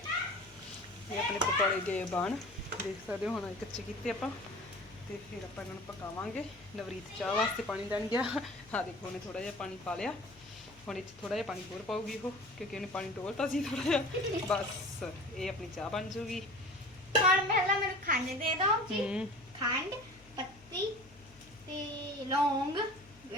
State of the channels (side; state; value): left; noise; hum, 24 dB below the sound